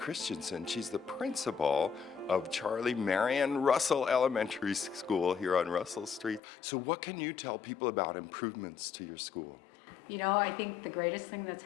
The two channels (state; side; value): drops out; right; at 6.4 s